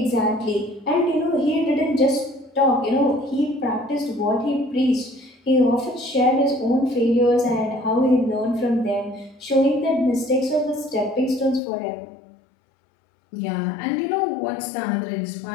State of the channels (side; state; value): right; drops out; at 11.6 s